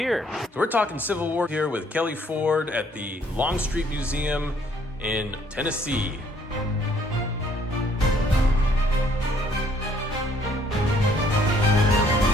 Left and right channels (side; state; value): both; normal; correlation 0.64